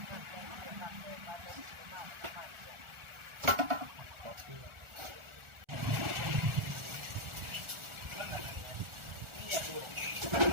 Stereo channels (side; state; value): left; late; 1.4 ms